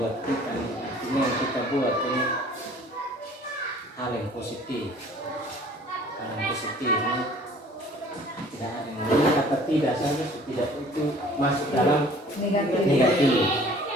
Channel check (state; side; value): normal; both; correlation 0.52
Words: buat kita nih. Artinya yang kita buat ini hal yang positif ini tidak ada yang kata tidak saja tidak itu masuk dalam negatif.